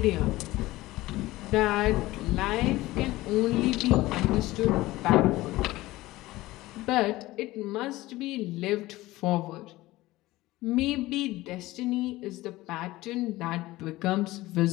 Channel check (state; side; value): quieter; right; 18.2 dB